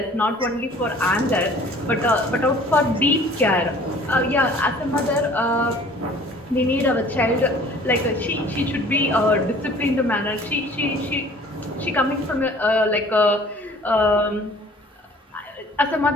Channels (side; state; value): both; normal; correlation 0.50